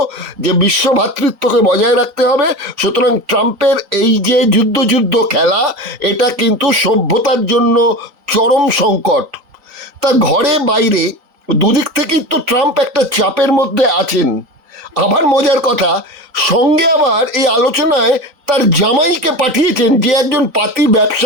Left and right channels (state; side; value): late; left; 3.9 ms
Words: যে বিশ্ব ভ্রাতৃত্বকে বজায় রাখতে হবে, সুতরাং ট্রাম্পের এই যে যুদ্ধ খেলা, এটা কিন্তু সভ্যতার জন্য চরম সংকট। তা ঘরে বাইরে দুদিক থেকেই তো ট্রাম্প একটা চাপের মধ্যে আছেন। আবার মজার কথা, সঙ্গে আবার এই আলোচনায় তার জামাইকে পাঠিয়েছেন, যে একজন পাতি